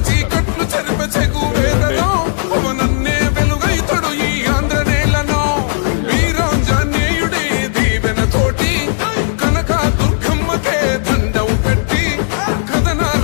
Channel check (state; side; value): silent; right; digital silence